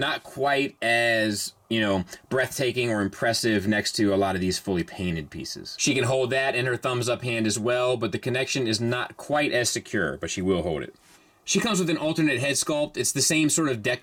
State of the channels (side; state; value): both; identical; correlation 1.00